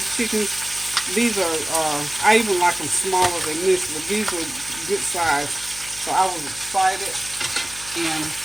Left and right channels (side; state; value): left; noise; hum, 19 dB below the sound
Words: chickens. These are, I even like them smaller than this, but these were good size. So I was excited. And